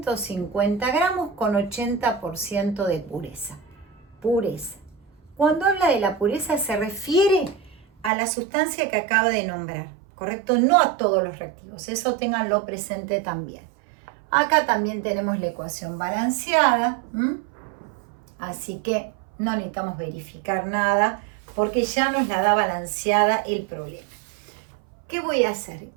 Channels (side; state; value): left; drops out; at 8.1 s